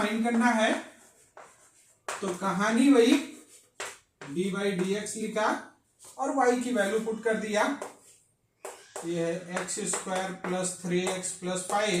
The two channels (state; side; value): identical; both; correlation 1.00